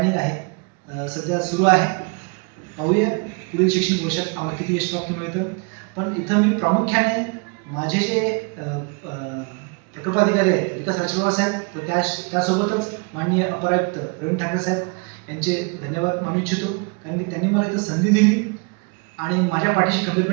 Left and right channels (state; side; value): quieter; left; 33.8 dB